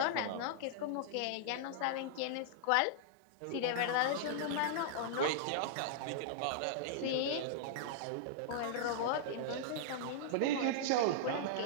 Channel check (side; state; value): both; different; correlation -0.02